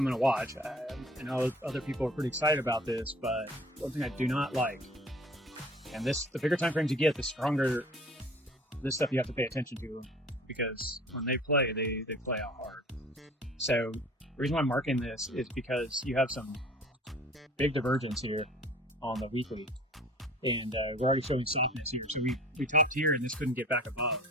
going to watch. I know other people are pretty excited about this, but one thing I do not like, and the bigger time frames you get, the stronger this stuff you have to pay attention to, because when they play, they play out hard. So the reason why I'm marking this is because you have some big divergence here on the weekly, and we're already showing softness here. So we topped here, and this couldn't get back above.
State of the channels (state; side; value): normal; both; correlation 0.46